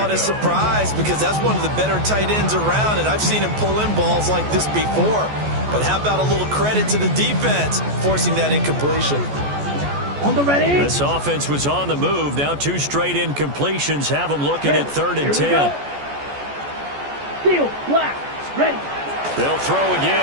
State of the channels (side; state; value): left; late; 14 ms